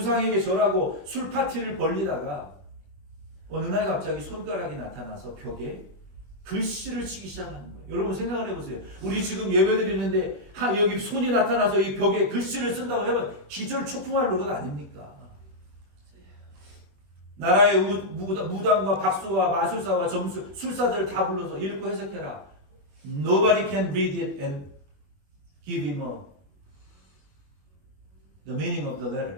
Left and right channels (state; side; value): late; left; 21 ms